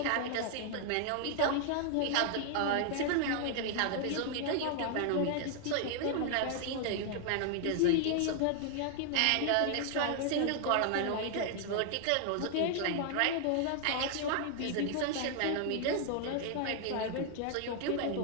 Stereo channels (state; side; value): different; both; correlation 0.00